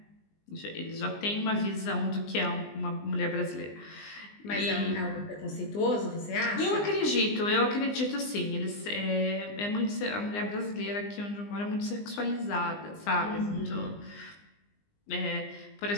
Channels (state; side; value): late; right; 20 ms